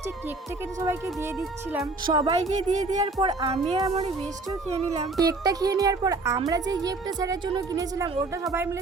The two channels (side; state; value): left; quieter; 3.4 dB